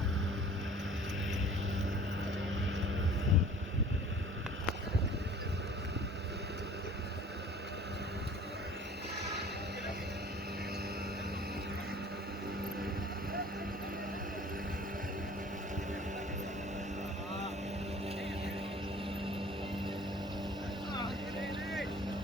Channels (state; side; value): normal; both; correlation 0.48